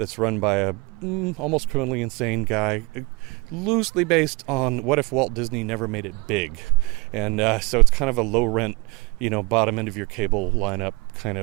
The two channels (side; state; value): left; quieter; 25.6 dB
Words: run by a almost criminally insane guy. Loosely based on what if Walt Disney never made it big. And so it's kind of a low rent, bottom end of your cable lineup kind